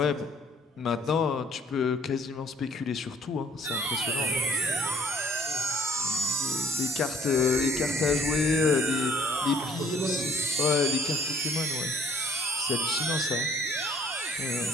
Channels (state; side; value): normal; both; correlation 0.59